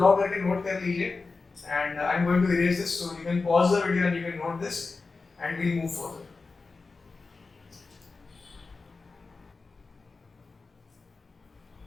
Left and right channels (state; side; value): quieter; right; 4.1 dB